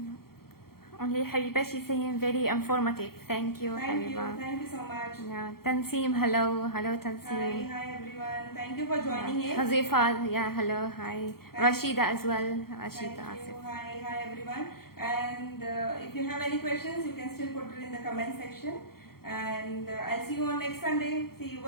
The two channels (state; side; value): late; right; 0.94 ms